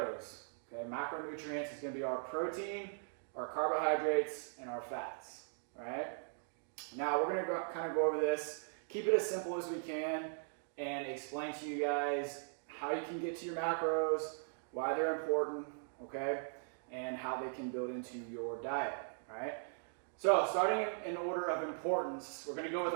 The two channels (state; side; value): silent; left; digital silence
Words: Okay, macronutrients is going to be our protein, our carbohydrates, and our fats. All right. Now we're going to kind of go over this, keep it as simple as we can, and explain to you guys how you can get to your macros, why they're important, okay, and how they can build into your diet. All right. So starting in order of importance, we're going to go with